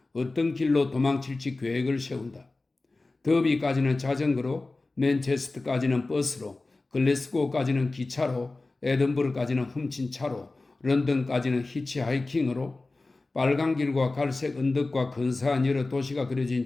어떤 길로 도망칠지 계획을 세운다. 더비까지는 자전거로, 맨체스터까지는 버스로, 글래스고까지는 기차로, 에든버러까지는 훔친 차로, 런던까지는 히치하이킹으로, 빨간 길과 갈색 언덕과 근사한 여러 도시가 그려진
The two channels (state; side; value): quieter; right; 3.3 dB